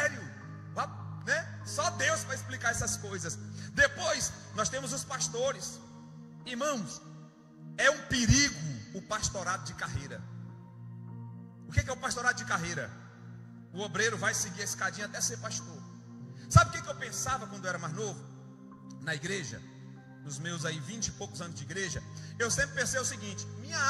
né? Só Deus vai explicar essas coisas. Depois nós temos os pastores. Irmãos, é um perigo o pastorado de carreira. O que é o pastorado de carreira? O obreiro vai seguir a escadinha até ser pastor. Sabe o que eu pensava quando eu era mais novo? Na igreja, nos meus aí 20 e poucos anos de igreja, eu sempre pensei o seguinte: minha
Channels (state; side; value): identical; both; correlation 1.00